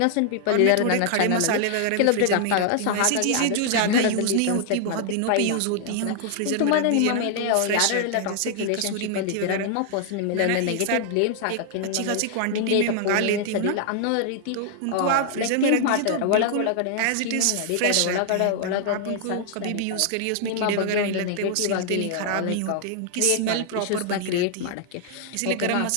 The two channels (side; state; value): both; different; correlation 0.00